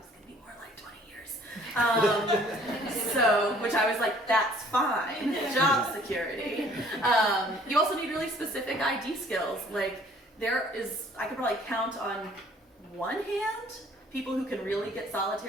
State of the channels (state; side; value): normal; both; correlation 0.57